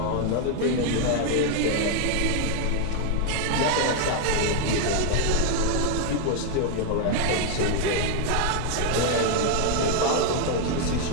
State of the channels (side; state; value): both; different; correlation 0.00